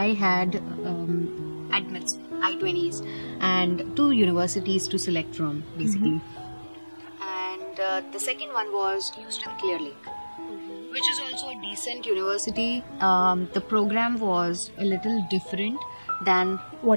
had admits, I-20s, and 2 universities to select from, basically. And the second one was Houston Clear Lake, which is also a decent university. The program was a little different than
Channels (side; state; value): both; inverted; correlation -1.00